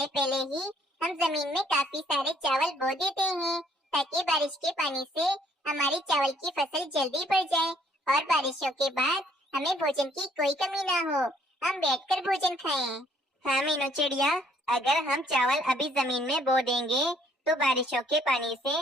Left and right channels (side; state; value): both; normal; correlation 0.64